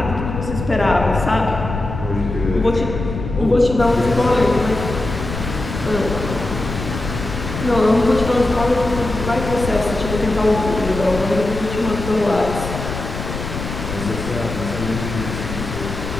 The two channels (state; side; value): noise; left; rumble, 6 dB below the sound